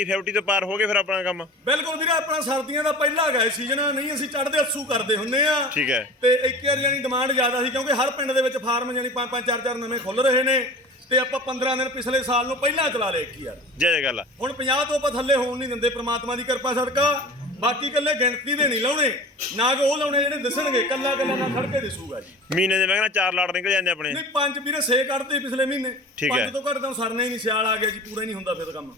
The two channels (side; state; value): both; normal; correlation 0.38